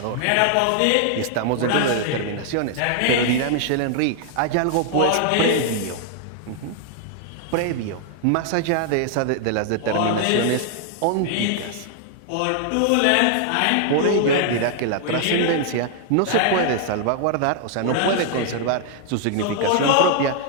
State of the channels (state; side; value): different; both; correlation 0.00